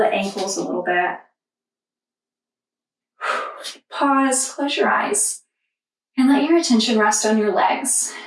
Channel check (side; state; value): both; identical; correlation 1.00